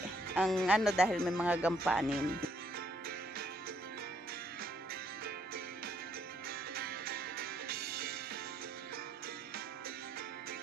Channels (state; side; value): normal; both; correlation 0.70